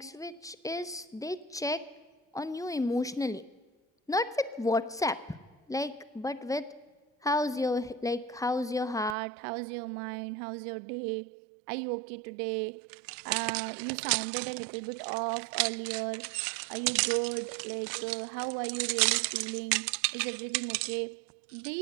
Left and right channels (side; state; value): left; drops out; at 9.2 s